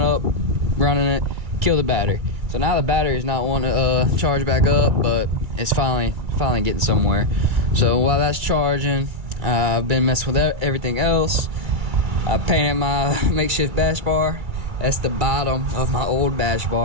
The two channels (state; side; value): late; left; 2.3 ms